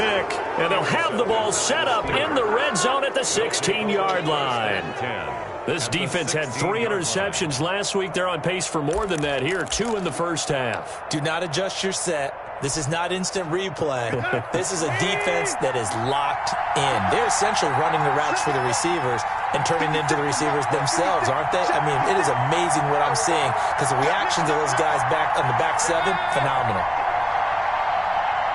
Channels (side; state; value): both; identical; correlation 1.00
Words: and they'll have the ball set up in the red zone at the 16-yard line. This defense had 3 interceptions last week. They're on pace for more than that here, 2 in the first half. Do not adjust your set. This is not instant replay. This is a defense that is locked in. They're essentially running the routes for the receivers and turning into the receivers themselves, aren't they? I mean, it is amazing what I'm seeing because the reactions of those guys back on the back 7, phenomenal.